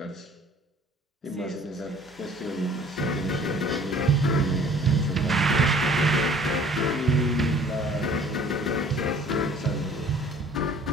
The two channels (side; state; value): both; normal; correlation 0.52